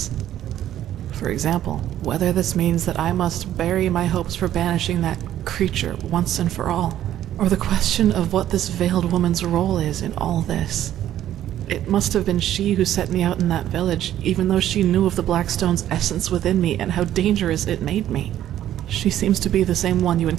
For example, whether this means that I must bury my hopes for banishing that creature once and for all, or the question of what this veiled woman's role is in all this. It must have been she who set me out in that village, even though she knew of the Black Stone's essence within me and how dangerous it made me. She seems to be the same one you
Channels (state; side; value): quieter; left; 12.0 dB